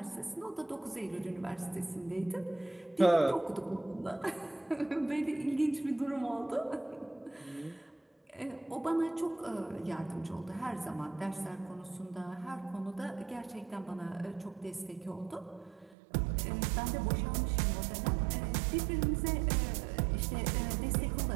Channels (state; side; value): drops out; left; at 16.0 s